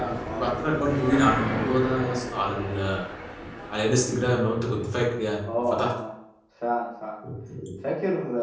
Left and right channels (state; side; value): identical; both; correlation 1.00